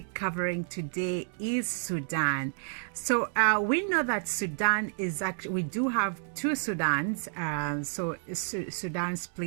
covering today is Sudan. So we know that Sudan is actually, we do have two Sudans. Sudan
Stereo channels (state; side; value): silent; left; 58 dB below the other